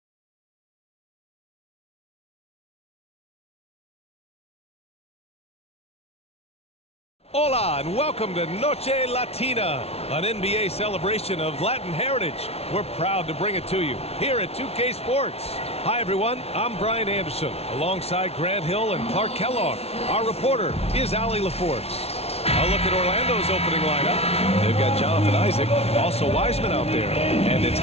Hola and welcome to Noche Latina, an NBA celebration of Latin heritage. We're proud to bring it to you here at 2K Sports. Hi everyone, I'm Brian Anderson, alongside Grant Hill and Clark Kellogg. Our reporter is Allie LaForce. A look at Orlando's opening lineup. They've got Jonathan Isaac, also Wiseman out there, and it's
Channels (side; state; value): right; late; 0.30 ms